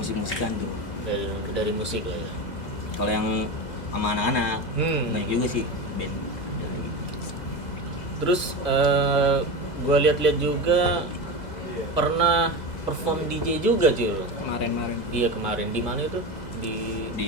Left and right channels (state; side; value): late; right; 2.0 ms